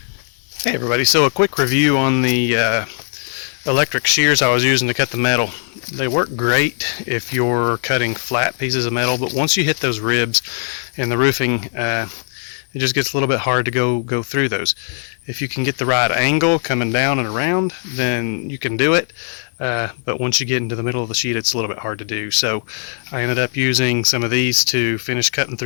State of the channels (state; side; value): silent; right; digital silence